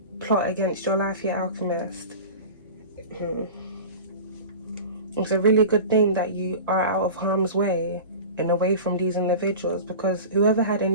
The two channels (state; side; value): inverted; both; correlation -0.34